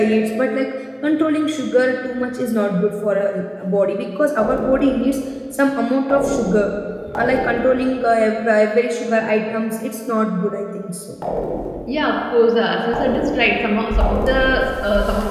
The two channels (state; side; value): identical; both; correlation 1.00